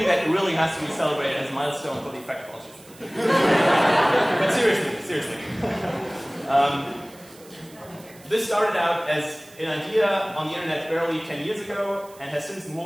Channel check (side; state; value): right; noise; hiss, 23 dB below the sound